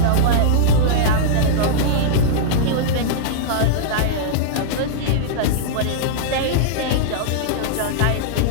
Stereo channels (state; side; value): different; both; correlation -0.02